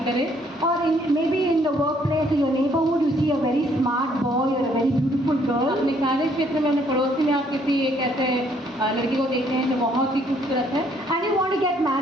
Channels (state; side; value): normal; both; correlation 0.66